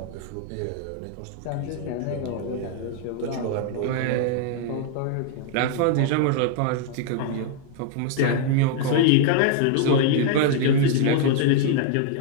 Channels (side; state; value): both; different; correlation 0.00